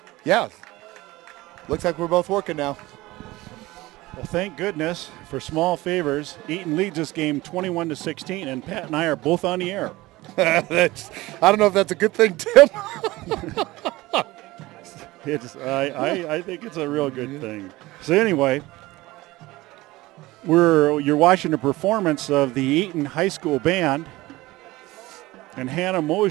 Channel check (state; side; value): quieter; left; 19.3 dB